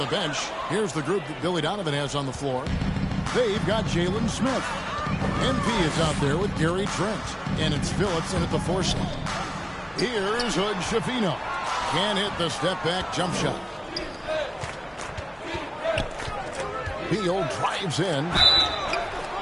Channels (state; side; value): identical; both; correlation 1.00